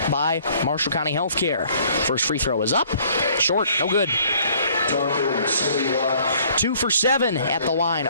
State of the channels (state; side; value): inverted; both; correlation -0.58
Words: by Marshall County Healthcare. First free throw is up, short, no good. 2 for 7 at the line